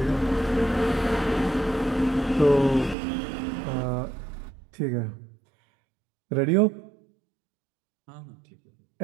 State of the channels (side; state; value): left; drops out; at 3.0 s